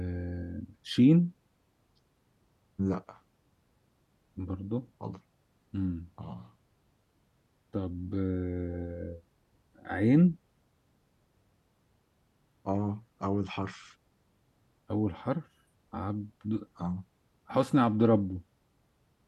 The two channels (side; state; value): both; identical; correlation 1.00